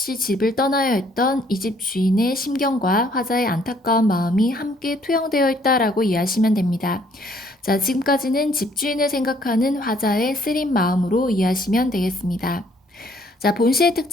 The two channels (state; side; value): normal; both; correlation 0.64